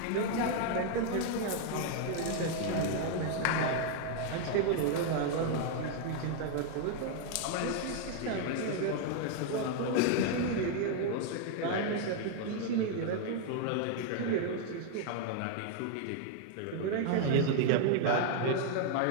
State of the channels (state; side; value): different; both; correlation 0.00